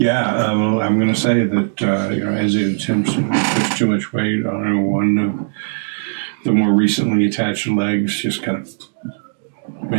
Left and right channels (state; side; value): silent; left; digital silence